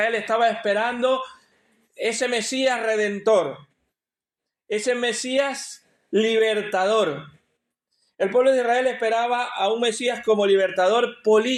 estaba esperando ese Mesías redentor, ese Mesías libertador. El pueblo de Israel esperaba a un Mesías como libertador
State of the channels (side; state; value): both; identical; correlation 1.00